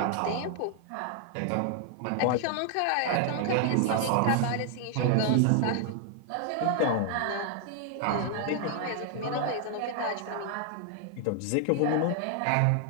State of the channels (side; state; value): both; different; correlation 0.00